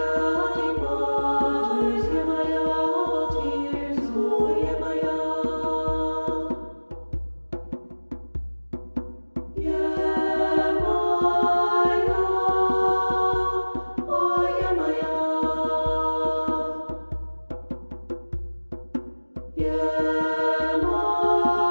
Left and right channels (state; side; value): inverted; both; correlation -1.00